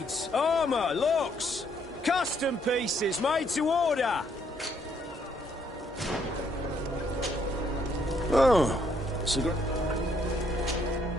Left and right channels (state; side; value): normal; both; correlation 0.70